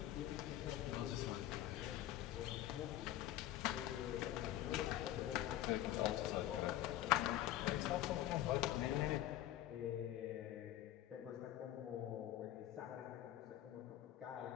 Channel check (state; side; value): quieter; right; 13.6 dB